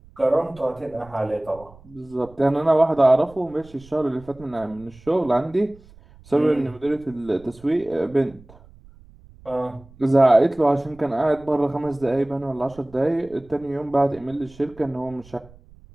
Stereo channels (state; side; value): noise; right; rumble, 24 dB below the sound